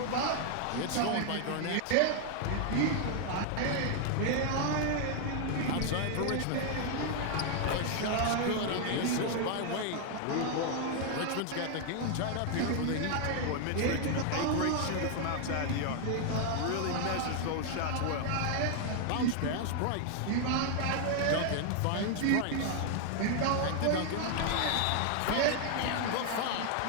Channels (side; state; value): both; different; correlation 0.00